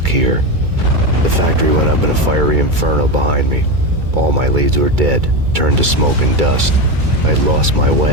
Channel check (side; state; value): left; late; 2.3 ms